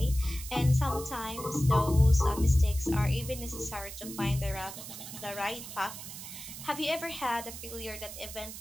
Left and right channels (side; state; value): right; noise; hiss, 11 dB below the sound